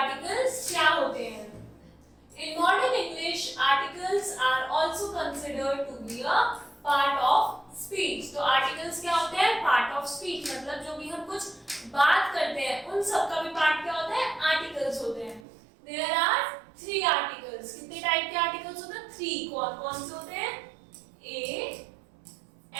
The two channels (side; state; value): left; drops out; at 15.5 s